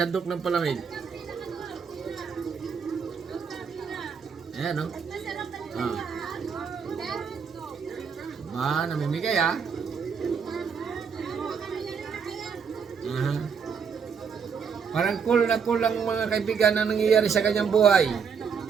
ng palamig. Ayan, no? Namimigay, ah. Parang cool na cool lang mga kaibigan na nangyayari sa kanyang buhay.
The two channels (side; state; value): left; quieter; 6.4 dB